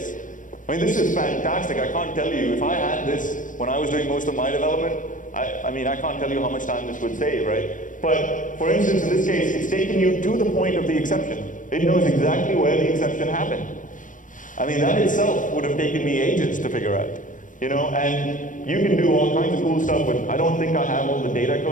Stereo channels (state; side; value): late; right; 0.38 ms